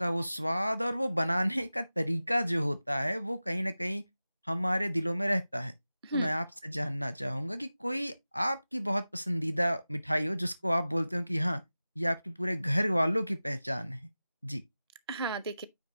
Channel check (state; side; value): inverted; both; correlation -0.96